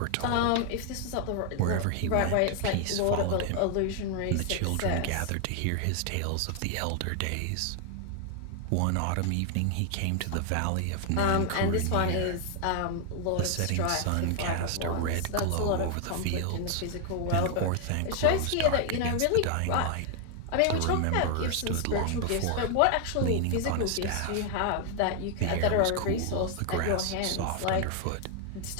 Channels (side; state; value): both; different; correlation 0.00